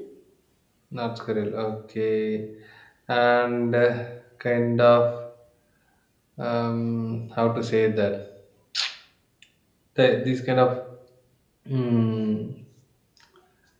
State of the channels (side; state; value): both; identical; correlation 1.00